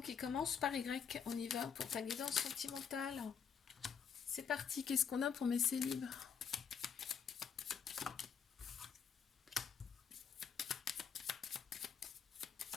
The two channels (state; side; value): quieter; right; 7.0 dB